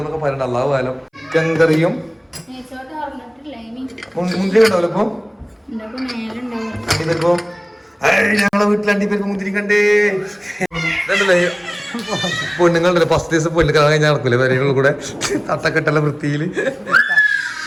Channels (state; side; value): identical; both; correlation 1.00